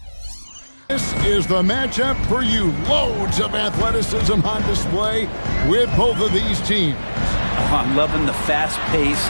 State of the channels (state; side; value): inverted; both; correlation -1.00